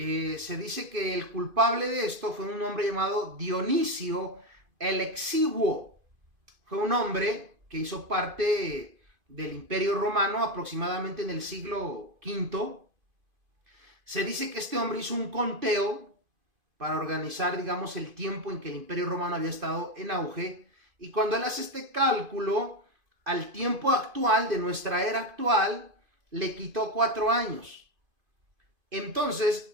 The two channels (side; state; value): left; late; 2.5 ms